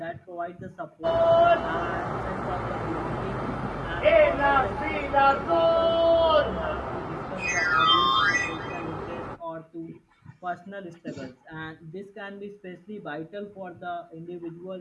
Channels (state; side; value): identical; both; correlation 1.00